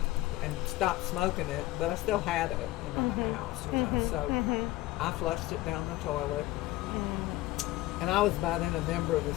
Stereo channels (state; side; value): quieter; right; 17.4 dB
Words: and stopped smoking it, but I still had it in my house, So I flushed it down the toilet. And I was by then a member of